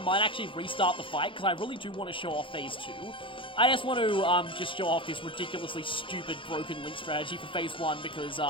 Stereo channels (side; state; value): right; late; 0.25 ms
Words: actually restart the fight, because I really do want to show off phase 2. I just want to, just show off this ridiculously stupid broken Link strategy for phase 1, because,